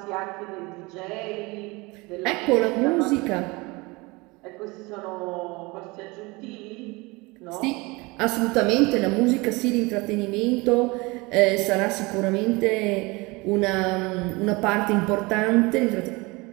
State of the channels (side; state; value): left; quieter; 24.7 dB